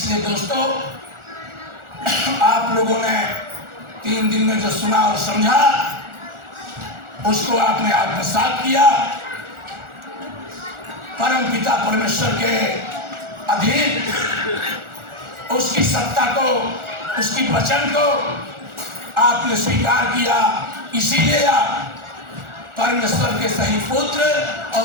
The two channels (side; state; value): left; late; 1.4 ms